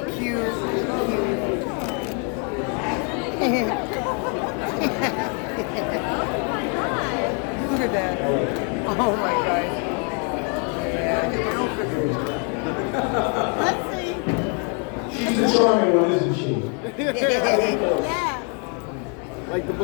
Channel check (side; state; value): right; quieter; 38.2 dB